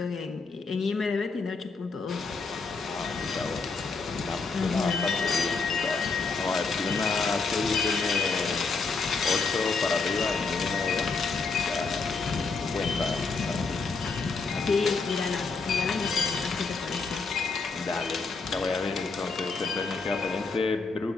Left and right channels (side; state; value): right; quieter; 4.3 dB